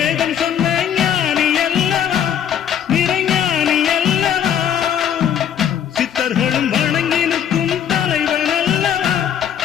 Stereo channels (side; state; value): right; quieter; 9.1 dB